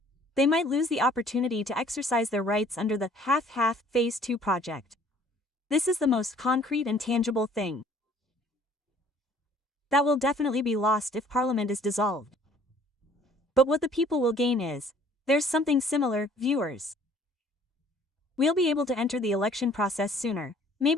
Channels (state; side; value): normal; both; correlation 0.56